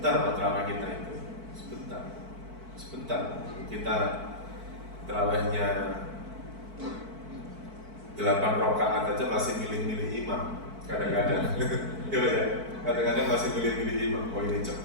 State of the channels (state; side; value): late; left; 4.5 ms